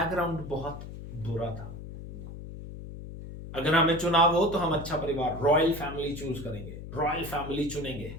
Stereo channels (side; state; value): left; noise; hum, 11 dB below the sound